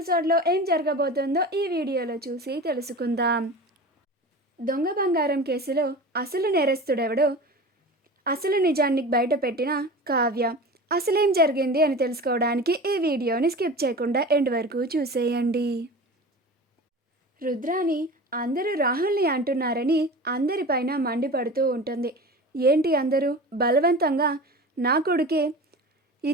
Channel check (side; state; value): both; normal; correlation 0.33